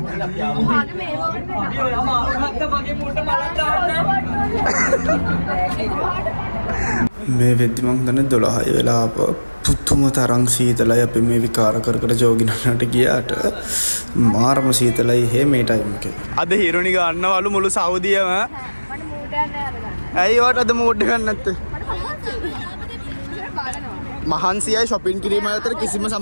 මේ වෙද්දි මං දන්නේ 12 වෙලා පුතුම තරම් සීතලයි අපි මේ විකාර කර කර ජෝගිනන්නට ගියාට මාරම සීතලයි හේ මේ ටයිම් එකේ. අද හිරුනි ගන්නවලු මුළු සෞදියම. ඇයි වට අද මූඩ් එකක් නැත්තේ? මහන්සියයි shopping කිරීම අතර කිසිම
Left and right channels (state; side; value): inverted; both; correlation -1.00